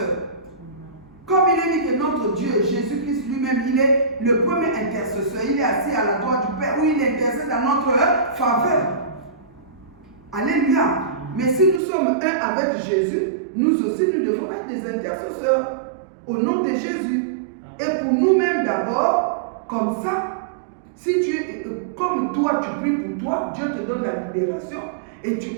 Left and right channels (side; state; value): left; drops out; at 11.8 s